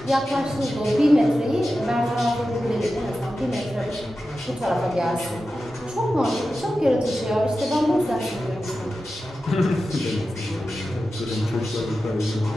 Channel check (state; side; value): normal; both; correlation 0.92